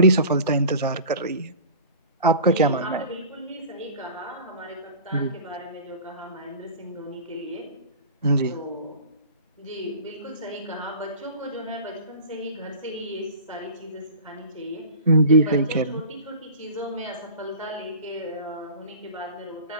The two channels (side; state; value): both; inverted; correlation -0.38